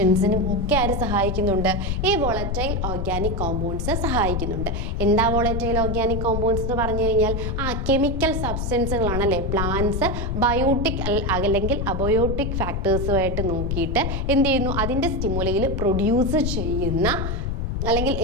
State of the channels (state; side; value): noise; left; rumble, 2 dB below the sound